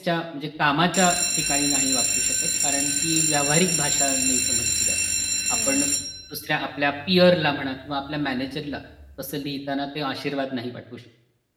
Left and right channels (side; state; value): both; identical; correlation 1.00